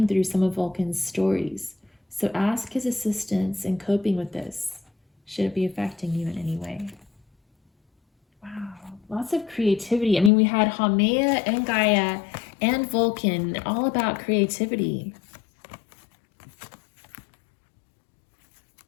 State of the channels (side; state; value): right; drops out; at 10.3 s